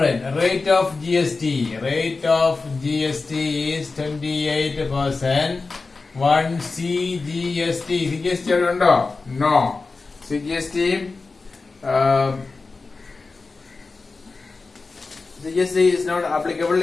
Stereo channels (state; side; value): quieter; right; 4.0 dB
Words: Rate of GST is 28%. One CGST. CGST അവിടെ ഉണ്ടോ? No. CGST is not applicable.